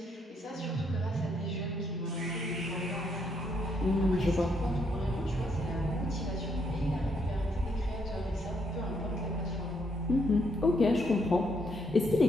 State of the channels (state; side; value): normal; both; correlation 0.74